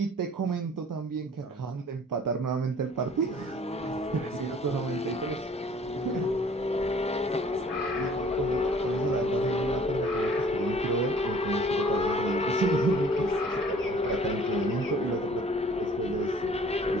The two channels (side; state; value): both; normal; correlation 0.53